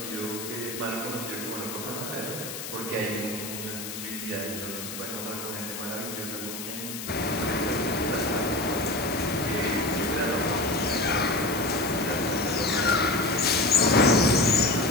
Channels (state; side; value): noise; left; hiss, 8 dB below the sound